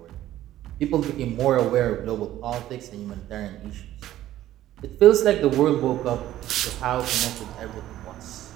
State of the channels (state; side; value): quieter; left; 13.6 dB